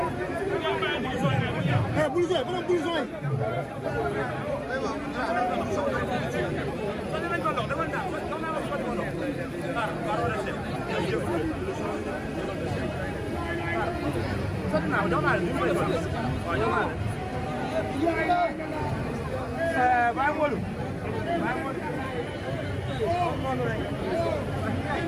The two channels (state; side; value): identical; both; correlation 1.00